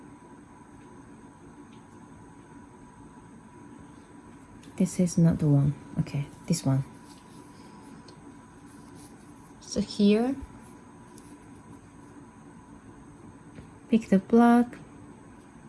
This is not the one. Okay, this one. So here, pick the black,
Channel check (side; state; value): both; identical; correlation 1.00